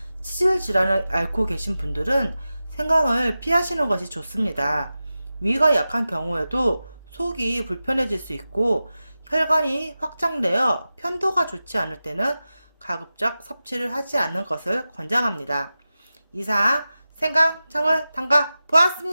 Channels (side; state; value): both; inverted; correlation -0.94